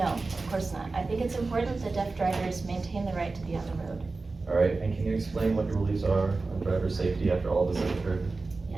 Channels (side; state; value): left; quieter; 3.7 dB